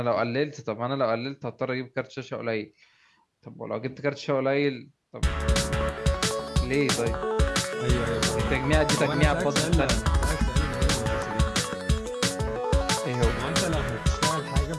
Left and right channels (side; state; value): both; identical; correlation 1.00